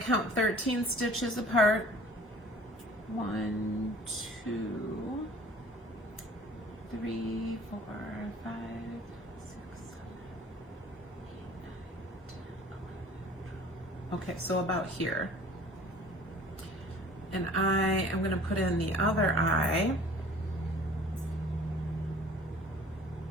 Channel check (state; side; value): normal; both; correlation 0.49